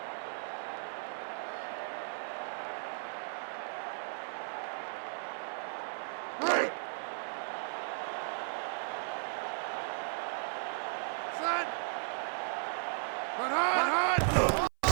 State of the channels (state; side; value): silent; left; 54 dB below the other